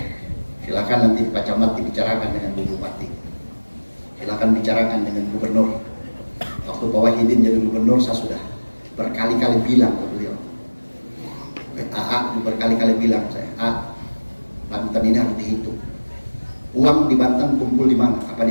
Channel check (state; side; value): inverted; both; correlation -1.00